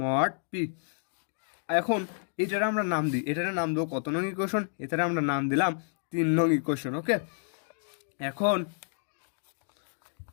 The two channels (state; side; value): silent; right; digital silence